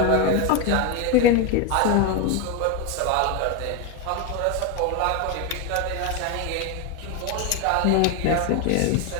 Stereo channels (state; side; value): different; both; correlation 0.02